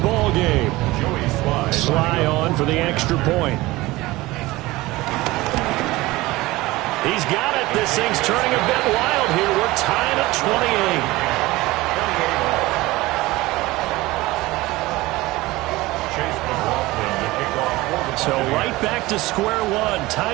game. Sly on for the extra point. He's got it. This thing's turning a bit wild here. We're tied at 28. So right back to square one,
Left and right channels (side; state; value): left; quieter; 19.6 dB